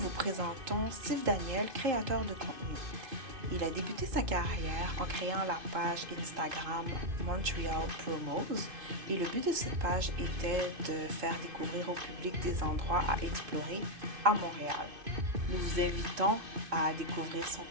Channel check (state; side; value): late; left; 2.6 ms